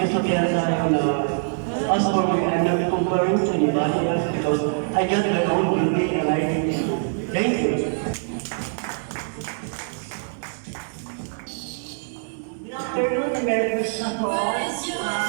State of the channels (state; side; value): silent; left; digital silence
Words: tayo na as for me, I'm not comparing to anybody else because I got my own beauty and I think so. Thank you. Good afternoon, Merry Christmas po. I'm